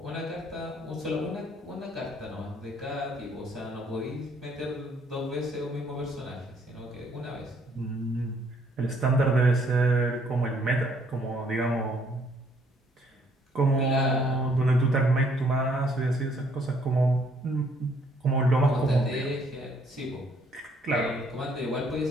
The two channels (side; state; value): both; normal; correlation 0.65